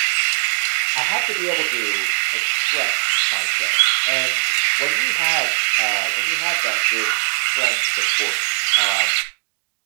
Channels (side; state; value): left; silent; digital silence